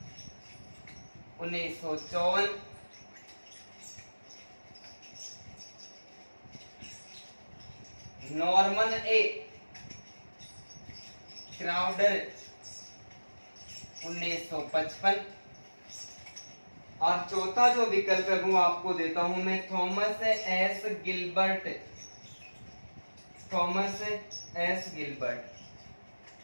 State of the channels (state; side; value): inverted; both; correlation -1.00